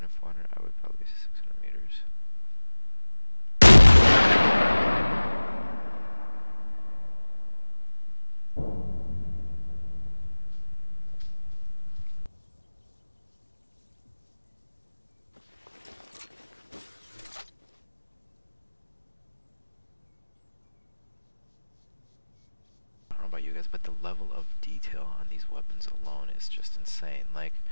400, I would probably say 600 meters. I don't know about you guys, but the level of detail on these weapons alone is just insane. Like,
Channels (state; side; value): inverted; both; correlation -1.00